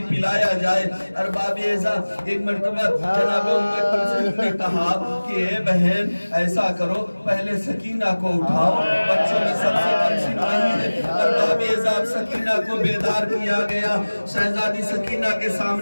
पिलाया जाए। अरबाब एज़ा एक मर्तबा जनाब उम्मे कुलसूम ने कहा कि ए बहन ऐसा करो, पहले सकीना को उठाओ, बच्चों में सबसे कमसिन वही है। अरबाब एज़ा सकीना को बेदार किया गया। शहजादी सकीना के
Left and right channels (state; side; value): inverted; both; correlation -1.00